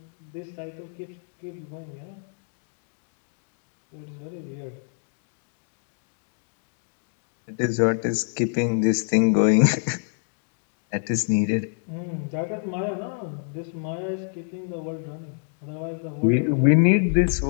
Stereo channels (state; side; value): silent; right; 61 dB below the other